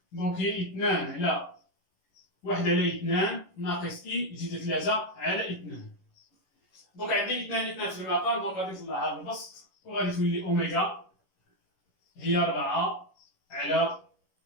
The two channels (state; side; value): late; right; 11 ms